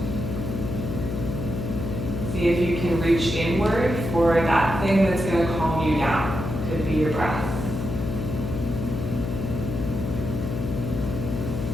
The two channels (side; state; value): left; noise; hum, 3 dB below the sound